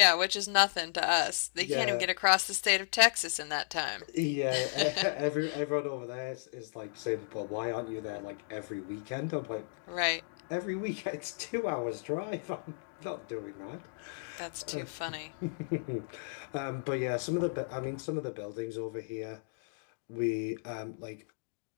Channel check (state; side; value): silent; right; digital silence